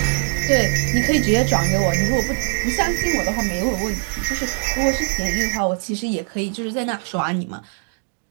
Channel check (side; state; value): left; silent; 61 dB below the other